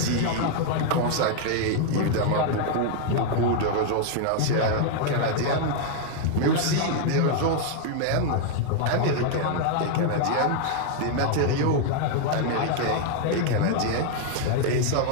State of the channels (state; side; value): different; both; correlation 0.00